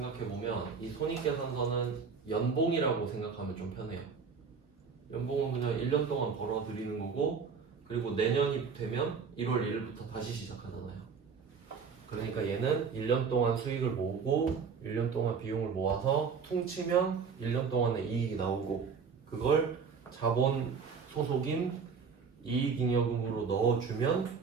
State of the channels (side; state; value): left; quieter; 5.8 dB